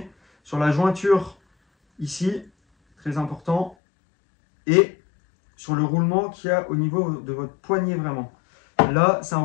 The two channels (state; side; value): drops out; right; at 3.8 s